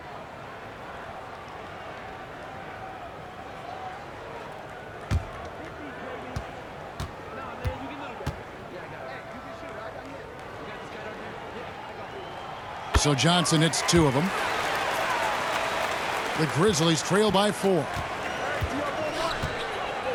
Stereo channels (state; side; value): identical; both; correlation 1.00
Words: So Johnson hits 2 of them. The Grizzlies trail by 4.